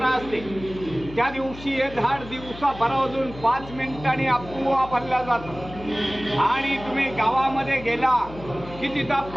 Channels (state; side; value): noise; left; hum, 15 dB below the sound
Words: असते. त्या दिवशी हे झाड दिवसा भरावरून 5 मिनिटांनी अफवा बनल्या जातं. आणि तुम्ही गावामध्ये गेला की तिथं